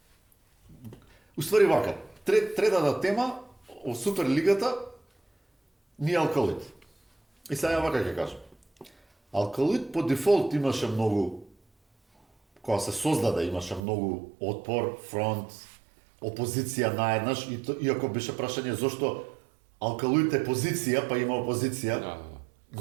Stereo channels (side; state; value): left; drops out; at 13.8 s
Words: уствари вака. Третата тема о Суперлигата ни Алкалуид. И сега вака ќе кажам. Алкалуид по дефолт имаше многу, кога се создаде, имаше многу отпор, фронт, опозиција наеднаш, иако беше прашање зошто Алкалуид е позиција, па има опозиција.